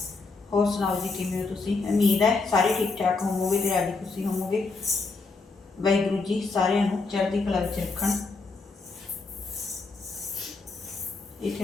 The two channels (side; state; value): right; quieter; 4.0 dB